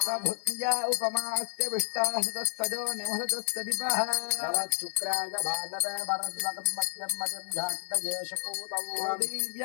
भुक्त्या उपमास्य विष्टास्तजो निमः शुक्राय भानवे भरद्वगं मध्यं मजं झाक्तजेशपूतं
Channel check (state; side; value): silent; right; digital silence